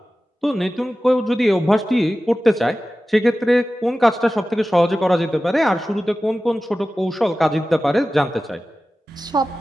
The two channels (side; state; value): both; normal; correlation 0.95